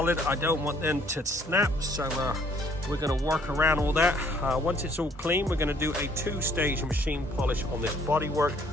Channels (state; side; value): normal; both; correlation 0.62